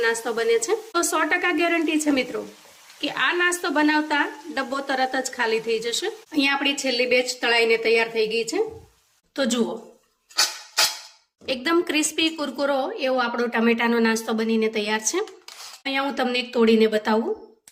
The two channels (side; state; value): both; identical; correlation 1.00